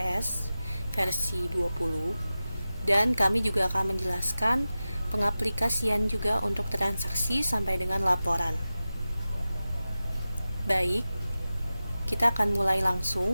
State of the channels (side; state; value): both; inverted; correlation -0.95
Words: versi 20, dan kami juga akan menjelaskan pengaplikasian juga untuk transaksi sampai dengan laporan. Baik, kita akan mulai